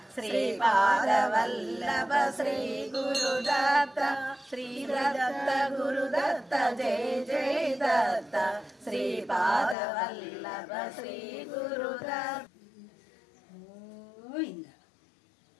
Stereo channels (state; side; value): drops out; right; at 9.8 s